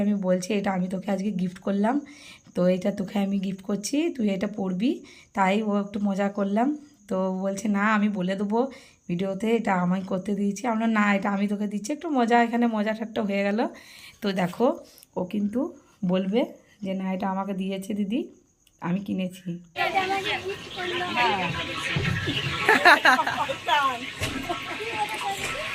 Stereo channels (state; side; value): identical; both; correlation 1.00